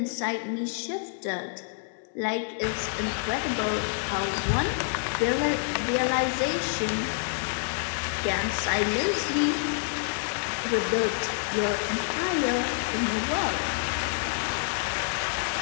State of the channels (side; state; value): right; silent; 59 dB below the other